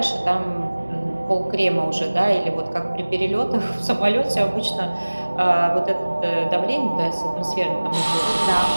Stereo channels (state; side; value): inverted; both; correlation -1.00